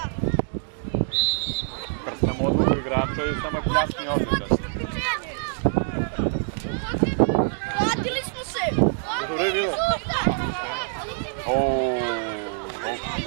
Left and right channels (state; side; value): silent; left; digital silence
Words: Krstam odluku igrača i samo pljasni ovdje, znaš. Vratili smo se! Dobro je bilo?